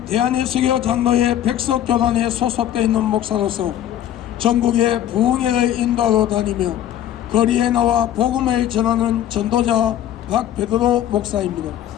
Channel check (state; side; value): quieter; right; 11.3 dB